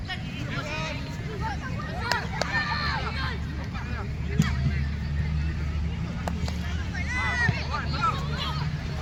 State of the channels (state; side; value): identical; both; correlation 1.00